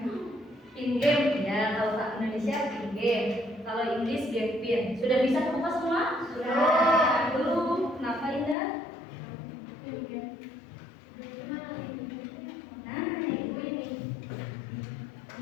Pin game ya. Kalau tak Indonesia pin game. Kalau Inggris game pin. Sudah bisa kebuka semua? Sudah. Belum. Kenapa Indah? Nah, itu ini.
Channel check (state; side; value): drops out; right; at 8.6 s